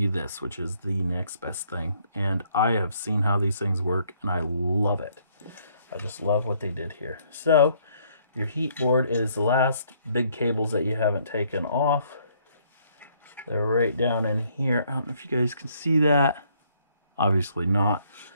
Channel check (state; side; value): inverted; both; correlation -0.67